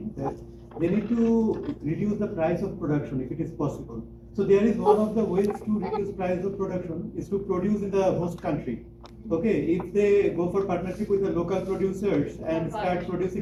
that they need to reduce the price of production if it is possible. So there is one of the ways to reduce price of production is to produce in the host country. Okay, if they go for partnership with the local producers and start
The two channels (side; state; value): both; identical; correlation 1.00